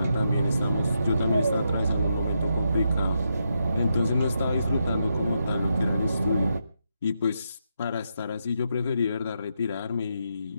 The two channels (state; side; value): inverted; both; correlation -0.82